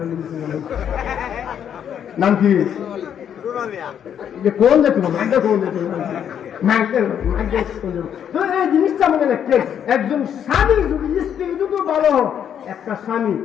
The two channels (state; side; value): quieter; right; 8.9 dB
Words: মিলিছে নাম কি? কোন যেত কোন যেত এই জিনিসটা মনে রাখতে, একজন স্বামী যদি স্ত্রী দুটো ভালো, একটা স্বামী